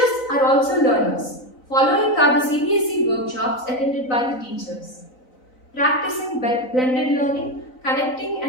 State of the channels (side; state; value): right; late; 3.9 ms